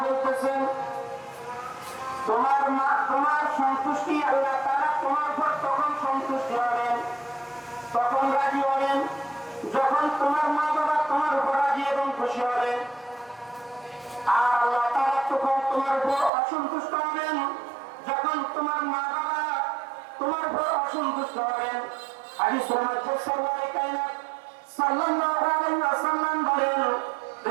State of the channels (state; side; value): drops out; left; at 16.3 s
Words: বলতেছেন, তোমার সন্তুষ্টি, আল্লাহ তাআলা তোমার উপর তখন সন্তুষ্ট হবেন তোমার মা বাবা তোমার উপর রাজি এবং খুশি হবেন, আর আল্লাহ তাআলা তখন তোমার উপর অসন্তুষ্ট হবেন যখন তোমার মা বাবা তোমার উপর অসন্তুষ্ট হবেন। হাদিসের মধ্যে সরওয়ারে কায়নাত সাল্লাল্লাহু আলাইহি ওয়াসাল্লাম বলেন,